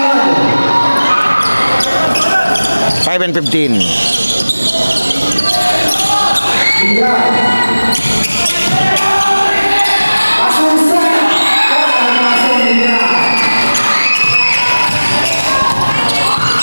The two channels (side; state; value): both; inverted; correlation -0.99